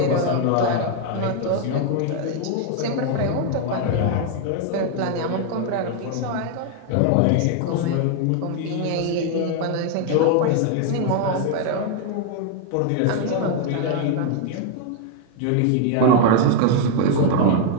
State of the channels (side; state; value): both; different; correlation 0.00